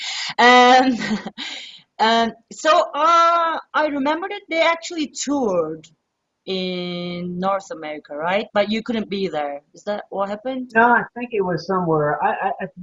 Um, I remember that they actually toured in North America, right? But you couldn't be there. Is that what happened? No, I think it was somewhere. I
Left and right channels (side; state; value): both; identical; correlation 1.00